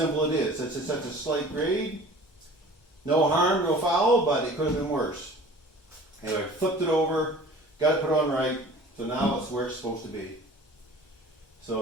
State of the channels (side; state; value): both; normal; correlation 0.45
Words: it is. It's such a slight grade. No harm, no foul, but it could have been worse. Anyway, flipped it over, got it put on right, so now it's where it's supposed to be.